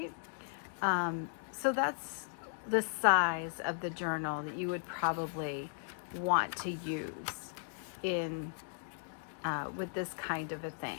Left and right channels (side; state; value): right; silent; digital silence